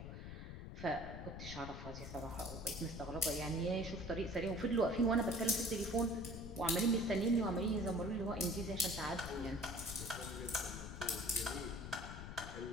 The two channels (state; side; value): noise; left; rumble, 9 dB below the sound